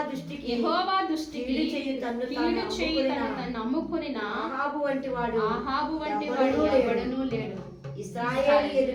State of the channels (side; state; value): both; identical; correlation 1.00